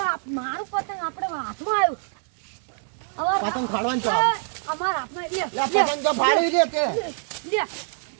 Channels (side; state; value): left; silent; 62 dB below the other